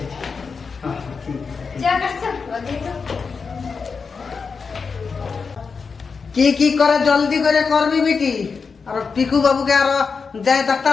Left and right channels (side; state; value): right; quieter; 5.2 dB